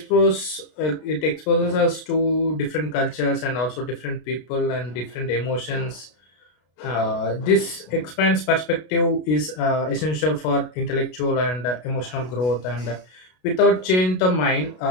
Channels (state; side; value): late; right; 33 ms